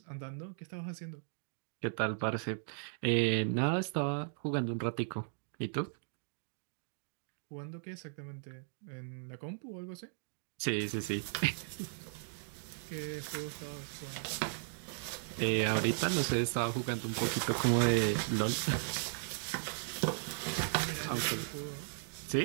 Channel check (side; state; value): left; silent; digital silence